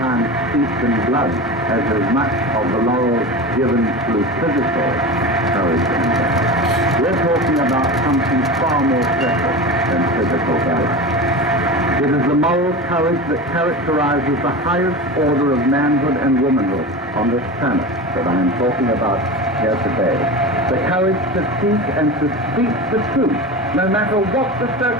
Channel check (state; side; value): normal; both; correlation 0.27